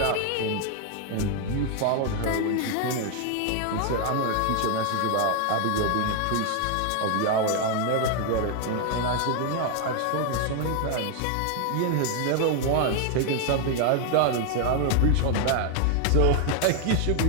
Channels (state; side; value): different; both; correlation 0.01